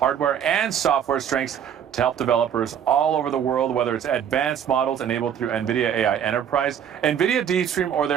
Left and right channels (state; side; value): quieter; left; 8.8 dB